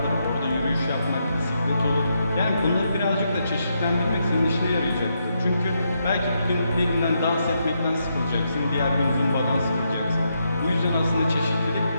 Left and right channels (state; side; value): inverted; both; correlation -0.80